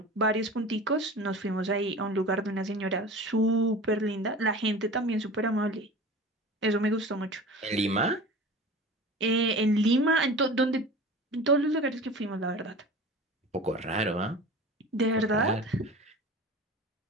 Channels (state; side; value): normal; both; correlation 0.36